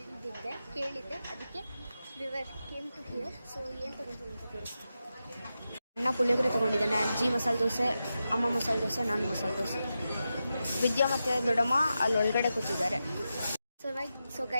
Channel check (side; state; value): both; inverted; correlation -0.90